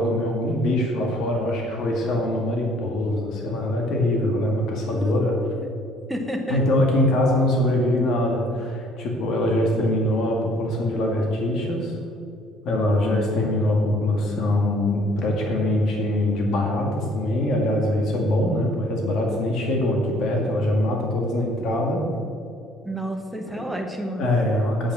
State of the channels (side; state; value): both; normal; correlation 0.59